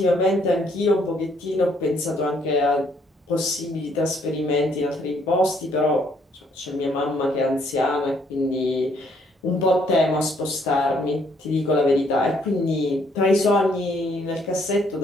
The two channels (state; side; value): normal; both; correlation 0.67